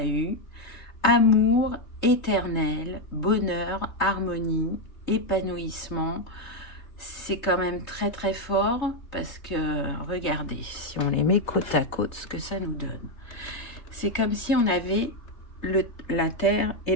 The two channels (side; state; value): right; late; 3.3 ms